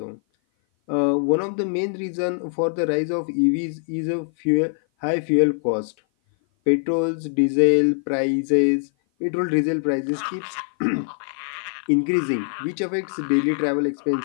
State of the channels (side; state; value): right; silent; 56 dB below the other